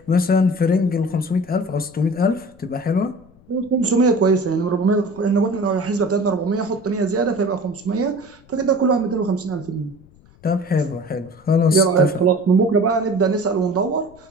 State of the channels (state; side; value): noise; left; rumble, 27 dB below the sound